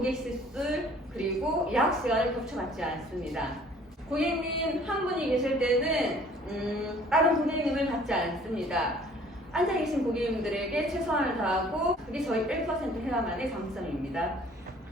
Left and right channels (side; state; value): both; normal; correlation 0.54